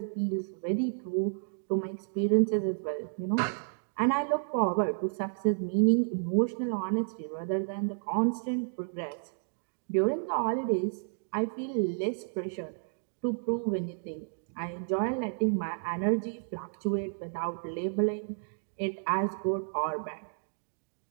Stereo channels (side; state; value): left; silent; digital silence